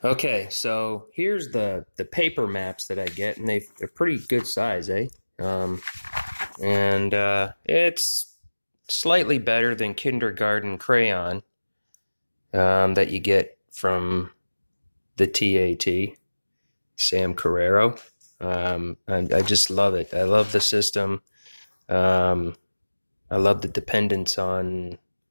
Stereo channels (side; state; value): both; inverted; correlation -1.00